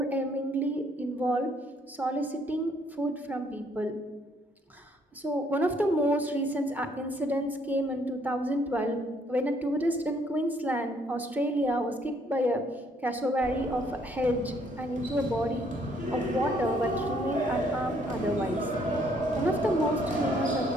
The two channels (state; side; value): normal; both; correlation 0.66